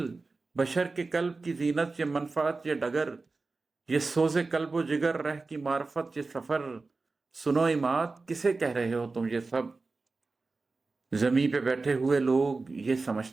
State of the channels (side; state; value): left; quieter; 3.8 dB